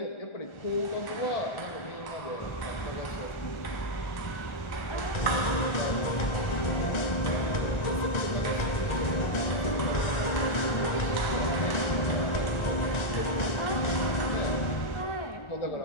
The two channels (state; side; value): late; right; 1.4 ms